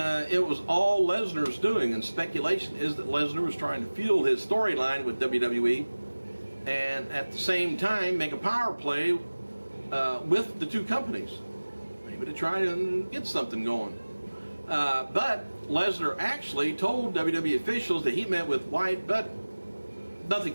it was all Lesnar's doing, and speculation is that Lesnar was trying to fuel his storyline with WWE and at the same time make a power play with the two companies, maybe to try and get something going. But Lesnar actually told WWE officials that he met with White, but nothing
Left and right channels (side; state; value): both; inverted; correlation -1.00